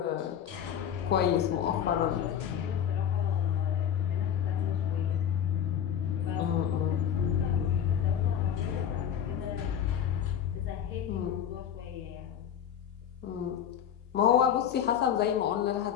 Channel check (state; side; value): quieter; right; 9.1 dB